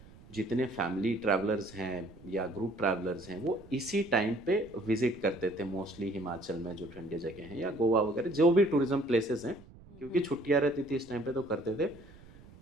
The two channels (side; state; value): right; noise; rumble, 21 dB below the sound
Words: जितने फैमिली ट्रैवलर्स हैं या ग्रुप ट्रैवलर्स हैं, वो इसी टाइम पे विजिट करते थे मोस्टली हिमाचल में जो ठंडी जगह हैं, या गोवा वगैरह जो भी टूरिज्म प्लेसेस हैं, क्योंकि छुट्टियां रहती थी इस टाइम पे, तो करते थे।